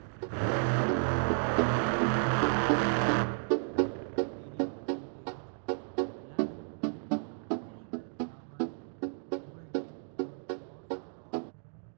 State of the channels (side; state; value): left; silent; 56 dB below the other